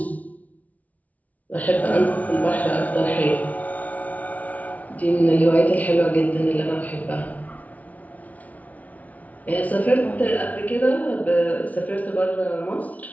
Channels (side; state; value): right; late; 0.071 ms